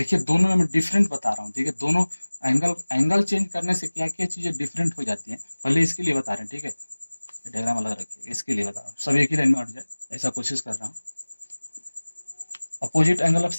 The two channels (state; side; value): inverted; both; correlation -1.00